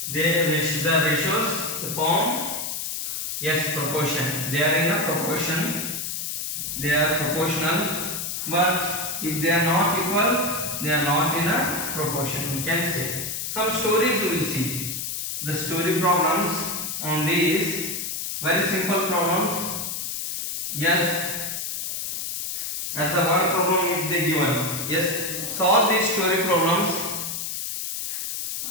the ratios form yes proportion. They are in a proportion. They are proportional, but if they are not equal, they are not in a proportion. We can say some stories we will see. The story problems on these very simple problems. Yes, as a one problem if they given. Yes, solve these story problems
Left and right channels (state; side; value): noise; left; hiss, 4 dB below the sound